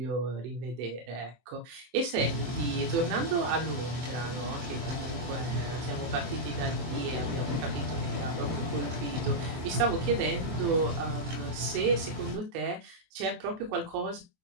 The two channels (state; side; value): late; left; 24 ms